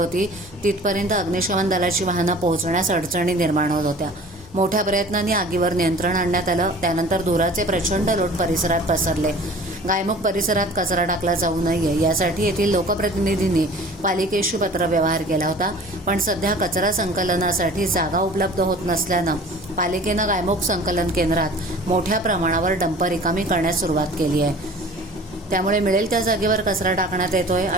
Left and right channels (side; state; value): both; normal; correlation 0.45